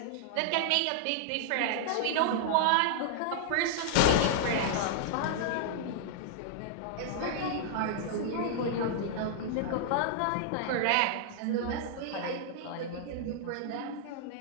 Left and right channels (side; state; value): both; different; correlation -0.01